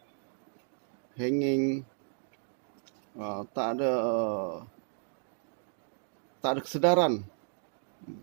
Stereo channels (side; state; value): left; silent; digital silence